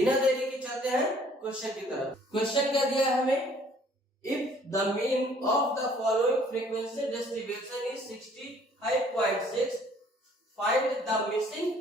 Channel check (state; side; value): normal; both; correlation 0.58